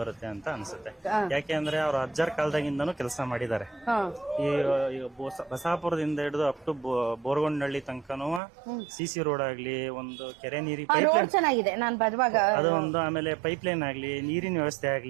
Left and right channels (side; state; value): left; drops out; at 8.4 s